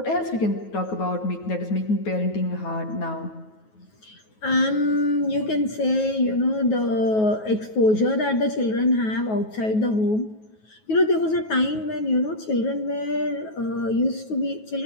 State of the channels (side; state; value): right; late; 9.3 ms